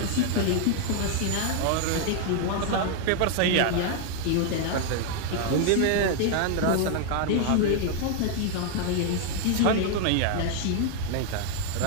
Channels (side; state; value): both; different; correlation 0.00